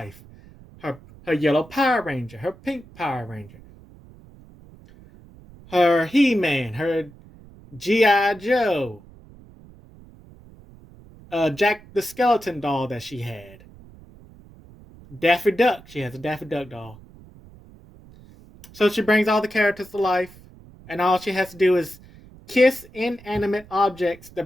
Her yellow Power Ranger, her pink Power Ranger, her He-Man, her G.I. Joe, Jack the Skeleton doll that she had. Daffy Duck. She has a Daffy Duck doll. So she brings all the characters to life, and all she has to do is kiss inanimate objects to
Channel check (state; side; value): noise; right; rumble, 22 dB below the sound